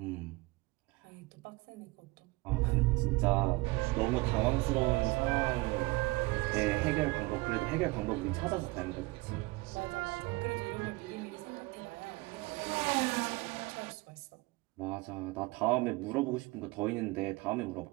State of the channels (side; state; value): left; quieter; 22.8 dB